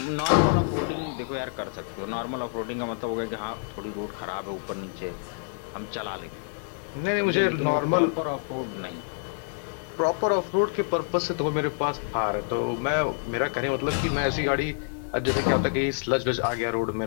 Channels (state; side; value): silent; right; 60 dB below the other